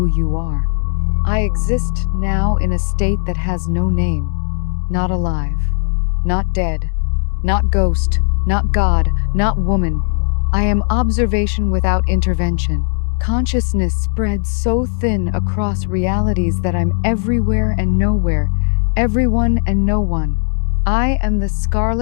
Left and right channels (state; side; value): silent; right; digital silence